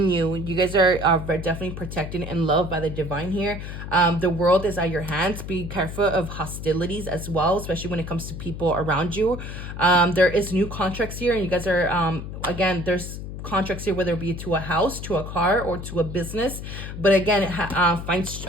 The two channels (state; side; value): noise; left; hum, 8 dB below the sound